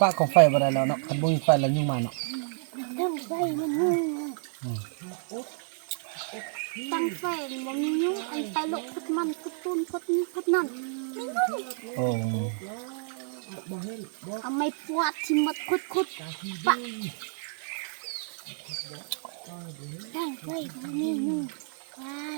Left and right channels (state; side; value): silent; left; digital silence